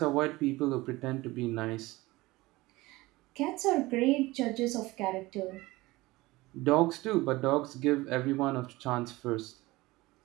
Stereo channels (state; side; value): quieter; left; 20.2 dB